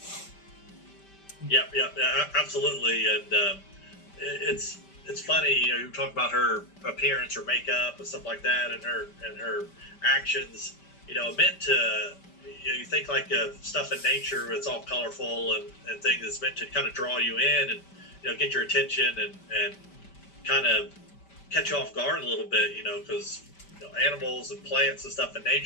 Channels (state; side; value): late; right; 5.1 ms